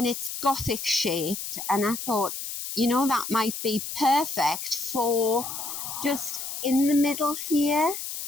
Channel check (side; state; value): left; noise; hiss, 6 dB below the sound